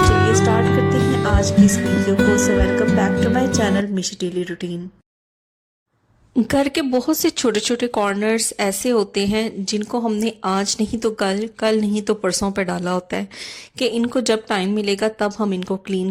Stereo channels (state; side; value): identical; both; correlation 1.00